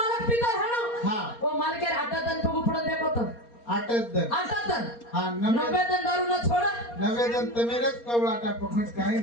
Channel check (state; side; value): late; right; 4.3 ms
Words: मालक पितो हेणो हा ओ मालकेर हातात आणि पगू पडत देखो आटत दन आटातन हा 90 दन दारू न छोड नवेदन तमेरच कवळाटा पकड काही